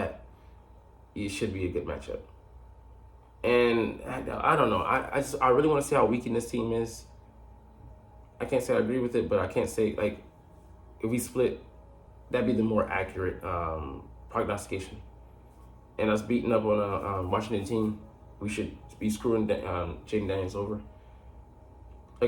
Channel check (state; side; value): identical; both; correlation 1.00